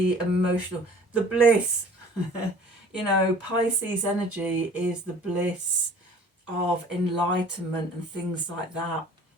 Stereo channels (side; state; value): both; normal; correlation 0.49